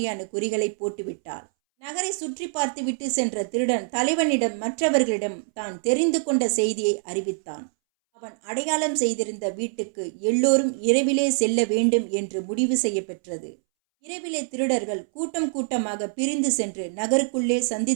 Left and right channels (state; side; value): silent; left; 62 dB below the other